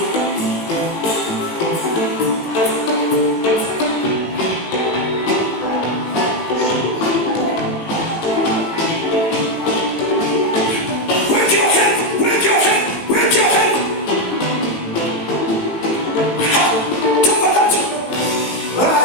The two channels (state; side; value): late; right; 18 ms